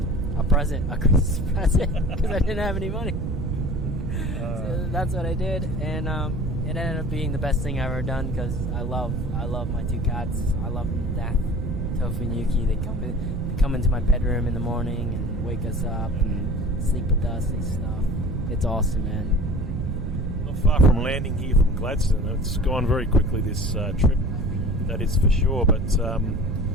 Christmas present, because I didn't have any money. So that's what I did, and it ended up being the best thing I've ever done, because I love my two cats. I love them to death. Tofu and Yuki, they come into my bedroom in the morning and wake us up and sleep with us and stuff. It's awesome, man. Not far from landing here from Gladstone. It's gone very quickly, this trip, that is for sure. But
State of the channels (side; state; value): right; noise; rumble, 2 dB below the sound